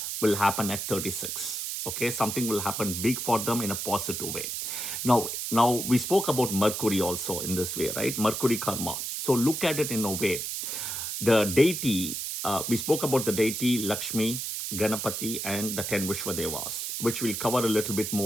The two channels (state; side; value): noise; right; hiss, 4 dB below the sound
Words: will happen at 36. Okay, something will happen big for them in a positive way. Now we spoke about Mercury also in this way, right? Mercury karma. So look at it in a way. The deity, we spoke about the deity Lakshmi, Ganapati, and the 10 Vishwadevas, which we'll cover a little bit